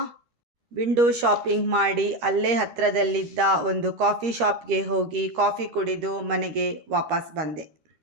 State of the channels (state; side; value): late; left; 13 ms